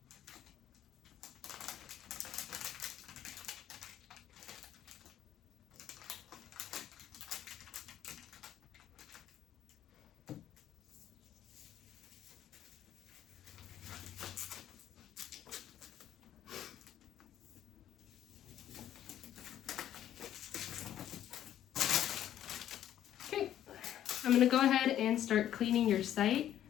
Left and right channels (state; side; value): quieter; right; 11.4 dB